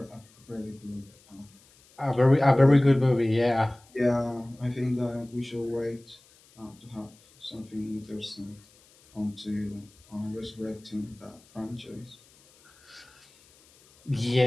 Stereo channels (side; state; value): left; noise; hiss, 29 dB below the sound